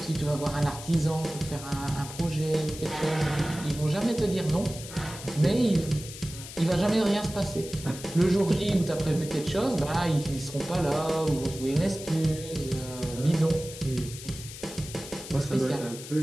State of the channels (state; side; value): noise; left; hiss, 12 dB below the sound